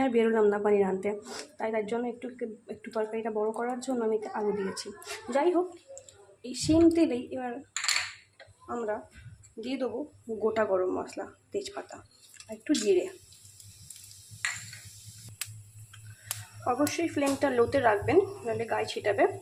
আর বেরোলাম না পনির আনতে, তাই তার জন্য একটু তরকারিটা বড় করার জন্য আমি আলু দিয়েছি। যাই হোক, এই সেম তেলেই এবার আমরা দিয়ে দেবো গোটা গরম মশলা, তেজপাতা আর একটু জিরে। অবশ্যই ফ্লেমটা লোতে রাখবেন, নাহলে গায়ে ছিটাবে।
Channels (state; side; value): identical; both; correlation 1.00